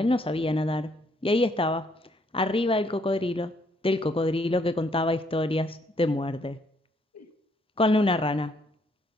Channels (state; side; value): normal; both; correlation 0.70